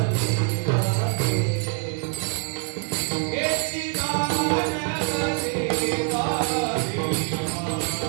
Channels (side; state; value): left; quieter; 38.4 dB